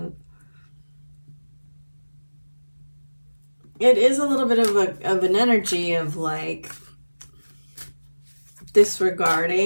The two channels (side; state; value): both; inverted; correlation -1.00